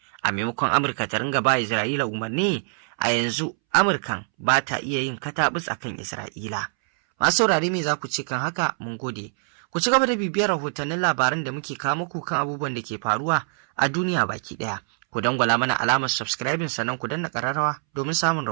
A maimakon Amurka ta ringa ba Isra'ila umarni, a yanzu Amurkan ba ta iya yin katabus akan Isra'ila. Masu saurare me za ku ce kan haka? Mun gode. Ku ci gaba da bibiyar rahotannin labaran da muke kawo muku kan abubuwan da ke faruwa a duniya baki ɗaya. Ku dangwala mana alamar subscribing sannan ku danna ƙararrawa domin samun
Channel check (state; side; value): silent; left; 62 dB below the other